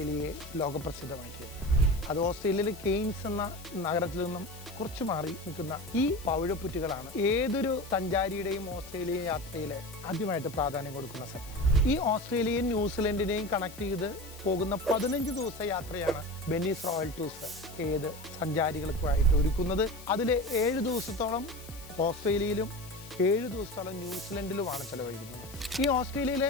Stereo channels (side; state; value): left; noise; hiss, 18 dB below the sound